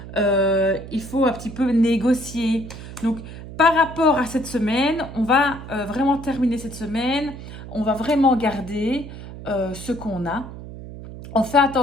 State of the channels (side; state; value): right; noise; hum, 13 dB below the sound